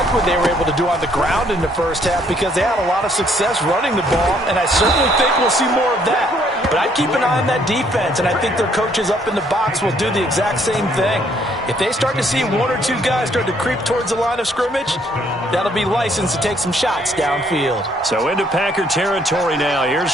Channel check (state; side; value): normal; both; correlation 0.66